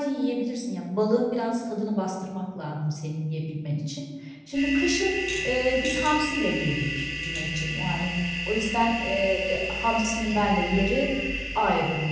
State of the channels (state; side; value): identical; both; correlation 1.00